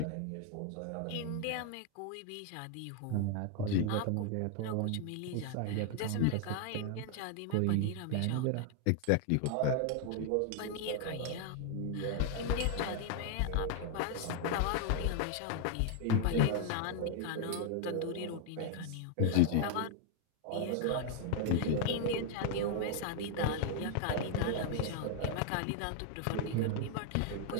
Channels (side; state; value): both; different; correlation 0.00